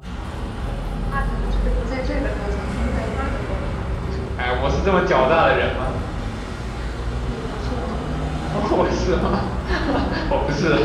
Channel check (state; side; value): identical; both; correlation 1.00